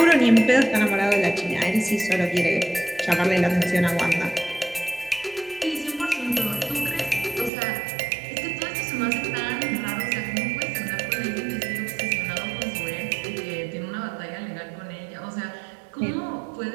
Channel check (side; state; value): left; drops out; at 7.5 s